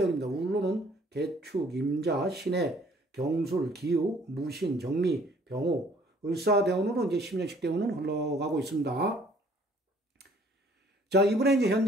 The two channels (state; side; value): normal; both; correlation 0.58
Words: 울로는 개축, 임자, 신해, 경술, 기우, 무신, 정미, 병호, 을사대운으로 이제 10년씩 대운은 흘러가고 있습니다. 자, 이분의 이제